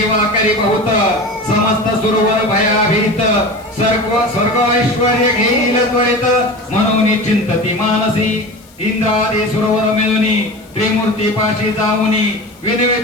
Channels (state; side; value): noise; left; hiss, 28 dB below the sound